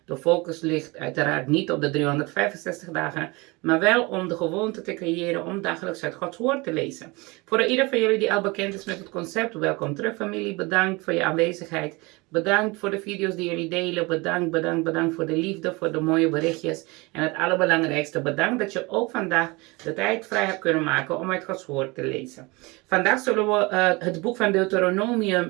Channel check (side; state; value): left; quieter; 25.1 dB